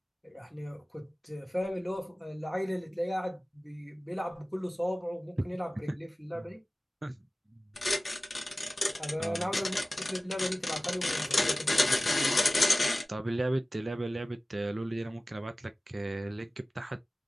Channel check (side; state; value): both; normal; correlation 0.97